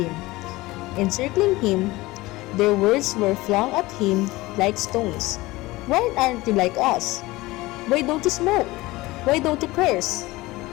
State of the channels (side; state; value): right; quieter; 20.0 dB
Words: Encircling him, their words were flung at him like stones. "Why aren't you like us? Why don't you smoke? Why don't you curse?"